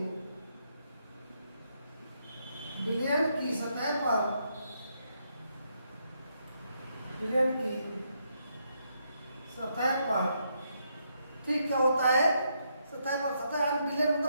पर ठीक क्या होता है, सतह यानी विलयन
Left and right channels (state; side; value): inverted; both; correlation -0.77